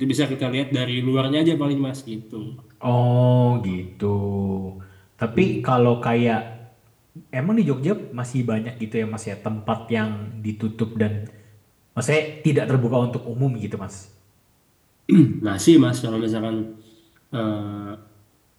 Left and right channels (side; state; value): both; identical; correlation 1.00